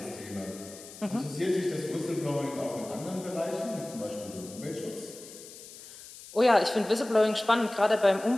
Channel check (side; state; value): left; noise; hiss, 16 dB below the sound